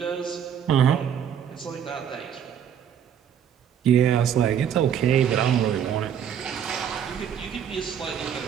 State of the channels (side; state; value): left; quieter; 8.7 dB